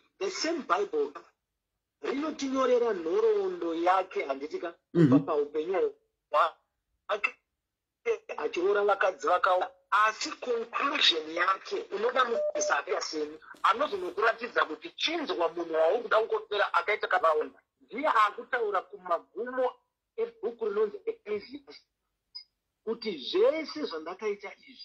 the same Bible rinotinyorera nhoroondo yake handitika kubva paupenyu hwake achiroora vakadzi vakawanda. Asi conclusion yake unoda muisapia seni anozonokuratidza kuti chinzwa munhu wauri kuda kungopera akaita kavawanda. Ndiye akutaura kumagumo ebhuku rinonzi Ecclesiastes kuti zvese zvandakaita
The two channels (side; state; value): both; identical; correlation 1.00